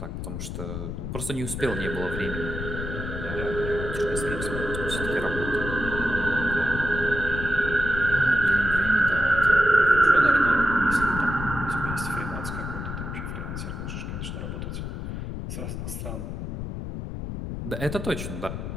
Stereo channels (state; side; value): noise; left; rumble, 6 dB below the sound